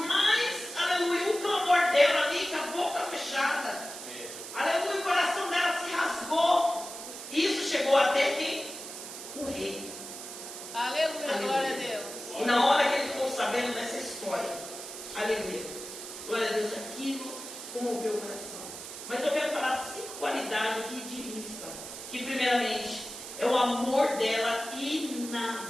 aleluia, o clamor dela ali, com a boca fechada. Aleluia, o coração dela se rasgou. Isso chegou até quem? O rei. Aleluia, glória a Deus. E na hora que ele ficou sabendo dessa história, aleluia, glória a Deus, aquilo comoveu o coração. Mas eu quero falar 5 qualidades aqui de Rispa, que primeiramente é o amor dela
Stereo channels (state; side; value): noise; right; hiss, 10 dB below the sound